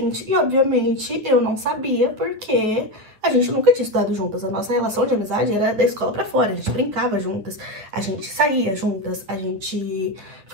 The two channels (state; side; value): late; left; 9.4 ms